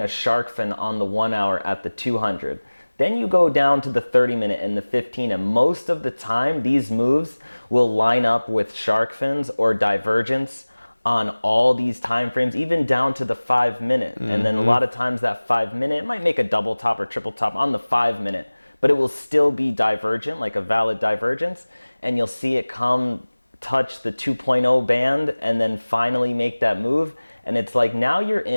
a shark fin on the 1 hour at the 200. Then you go down to the 30 minute and the 15, and most of the time these moves will line up with shark fins or divergence on all these time frames, even down to the 5 minute. And then a lot of times that 5 minute, it might make a double top or triple top on the 5 minute, but it will still be divergent, like a valid divergence. And you'll see it come touch the 2.0 band and then finally make that move. And it's like, now you're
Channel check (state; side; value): inverted; both; correlation -1.00